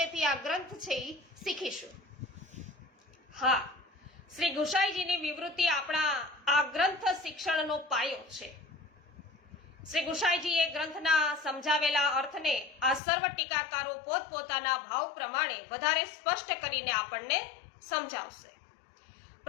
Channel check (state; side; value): drops out; right; at 13.0 s